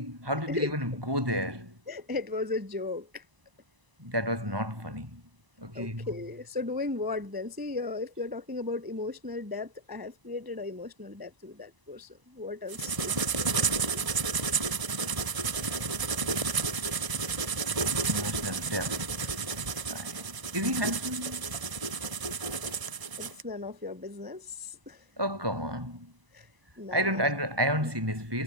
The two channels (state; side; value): late; left; 1.0 ms